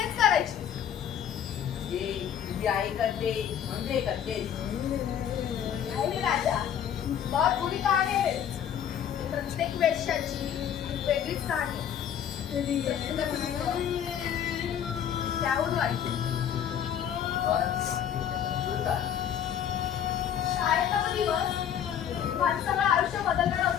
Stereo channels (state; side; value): quieter; right; 9.3 dB